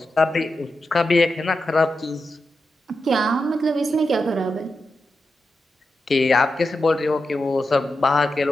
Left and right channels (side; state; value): both; normal; correlation 0.89